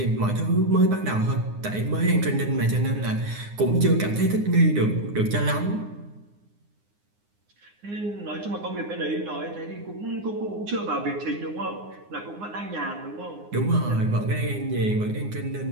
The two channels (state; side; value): late; left; 9.7 ms